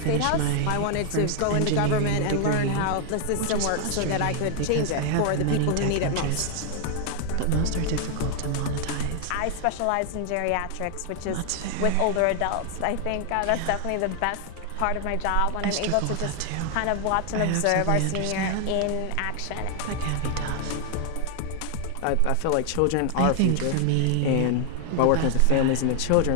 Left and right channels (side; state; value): both; different; correlation 0.00